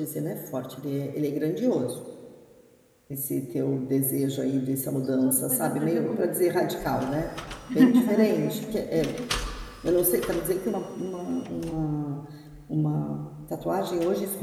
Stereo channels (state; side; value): identical; both; correlation 1.00